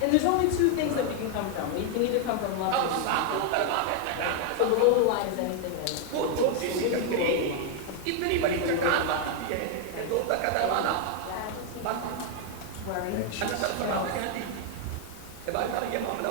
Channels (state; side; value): different; both; correlation 0.00